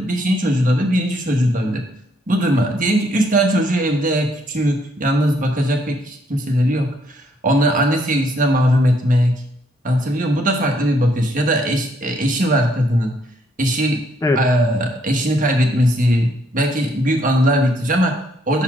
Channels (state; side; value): normal; both; correlation 0.70